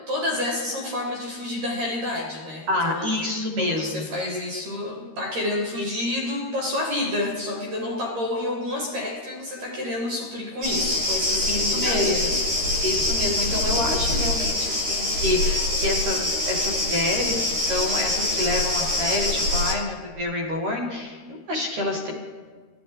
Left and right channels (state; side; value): late; left; 13 ms